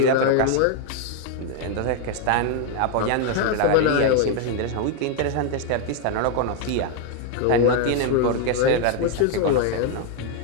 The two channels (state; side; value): different; both; correlation 0.01